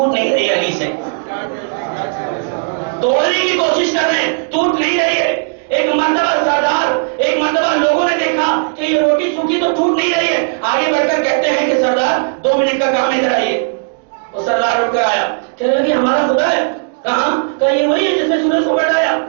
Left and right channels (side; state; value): left; silent; digital silence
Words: نہیں رہی علی سے، توڑنے کی کوشش کر رہے ہیں، ٹوٹ نہیں رہی ہے۔ ایک مرتبہ سردار، ایک مرتبہ لوگوں نے دیکھا کہ یہ روٹی سوکھی تو ٹوٹ نہیں رہی ہے، آگے بڑھ کر کہتے ہیں کہ سردار 2 منٹ کا کام ادھر آئیے، وہ سردار اٹھ کر آیا، کہنے لگے ہمارا خدا ہے، کہاں؟ کہا یہ وہی ہے جس نے سورج کو پلٹایا،